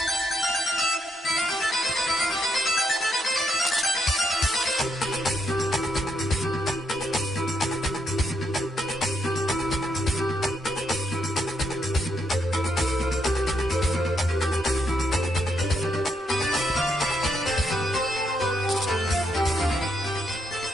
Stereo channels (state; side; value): normal; both; correlation 0.78